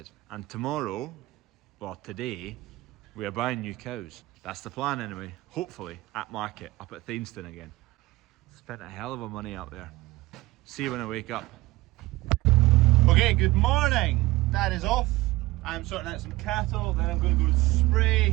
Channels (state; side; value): quieter; left; 19.6 dB